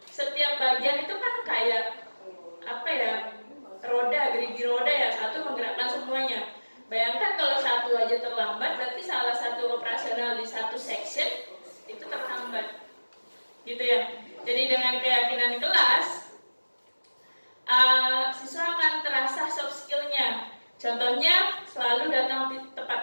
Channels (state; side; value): inverted; both; correlation -1.00